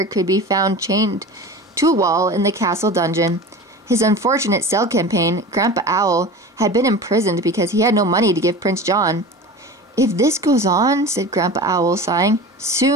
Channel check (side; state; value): both; normal; correlation 0.34